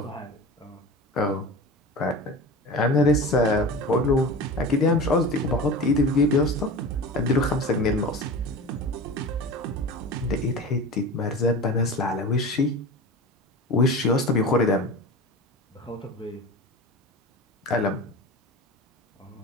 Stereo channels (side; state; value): both; normal; correlation 0.32